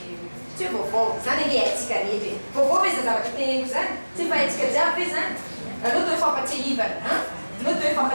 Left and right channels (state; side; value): inverted; both; correlation -1.00